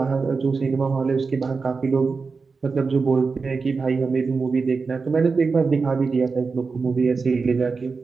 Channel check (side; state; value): left; quieter; 4.6 dB